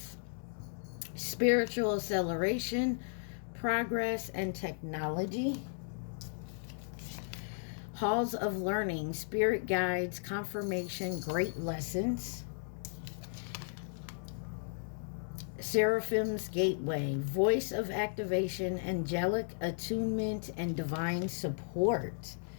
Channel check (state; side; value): silent; right; digital silence